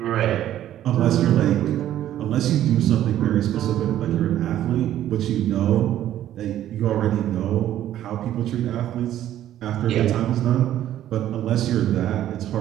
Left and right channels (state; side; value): quieter; left; 12.1 dB